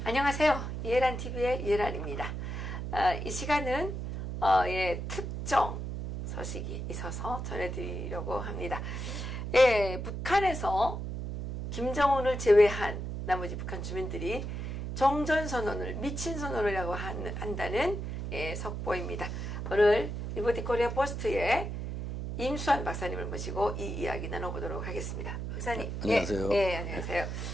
안녕하세요. 이해란 TV의 이해란입니다. 이 시간은 특정 소식이 있어서 전해드리려고 합니다. 북한에서 김정은을 제외한 나머지 북한 주민들이 정전선언을 미친 선언이라고 한다는 속보입니다. 오늘 리버티 코리아 포스트에 임수환 박사님을 모시고 이 이야기 나눠보도록 하겠습니다. 박사님. 안녕하세요. 안녕하세요.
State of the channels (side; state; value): right; noise; hum, 5 dB below the sound